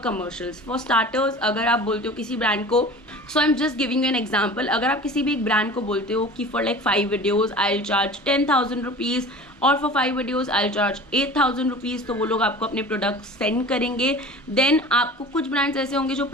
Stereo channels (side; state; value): both; normal; correlation 0.39